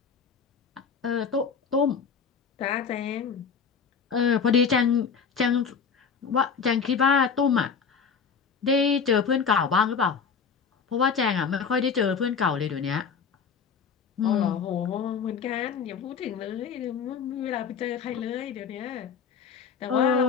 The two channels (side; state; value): right; quieter; 6.1 dB